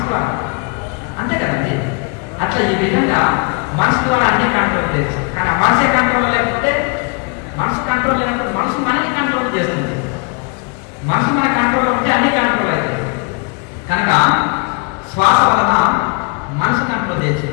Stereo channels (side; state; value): right; quieter; 34.7 dB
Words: ద్వారా. అంతే కదండి. అట్లా ఈ విధంగా మనసు ద్వారా అన్ని కంట్రోల్ చేయొచ్చు. కానీ ఆ మనసే కంట్రోల్ లేకపోతే, మనసు కంట్రోల్ లేనప్పుడు మనసు మనకి కంట్రోల్ చేస్తుంది. మనసు మన కంట్రోల్ ఉంటే అన్ని కంట్రోల్ అవుతుంది. కనుక శ్వాస వలన మనసు కంట్రోల్ చేయొచ్చు.